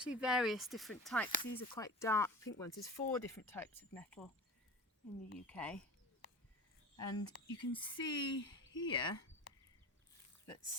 various different types. These are quite dark pink ones. There's 4 different types of nettle in the UK. And you can see here that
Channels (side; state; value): both; normal; correlation 0.34